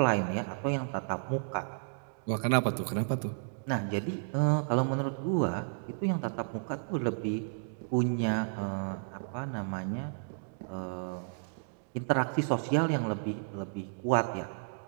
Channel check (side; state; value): left; silent; digital silence